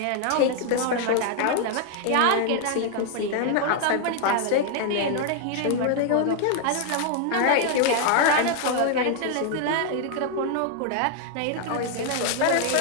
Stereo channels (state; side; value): different; both; correlation 0.00